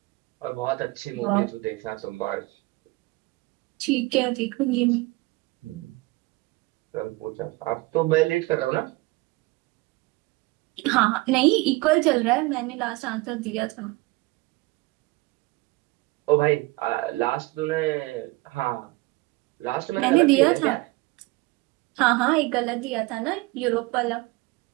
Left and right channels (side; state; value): left; quieter; 22.2 dB